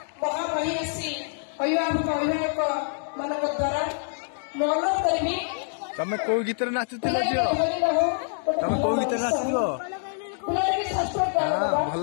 अभिभावक अभिभावक मान द्वारा मन करी तमें कौ गीत नाचुल तमें कौ गीत नाचल भल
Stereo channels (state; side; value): silent; right; digital silence